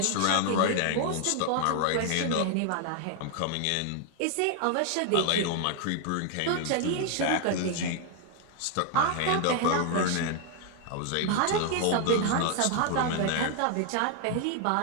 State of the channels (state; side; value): different; both; correlation 0.00